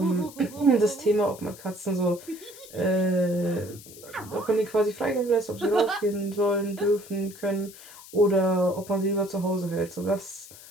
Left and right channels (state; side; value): noise; left; hiss, 18 dB below the sound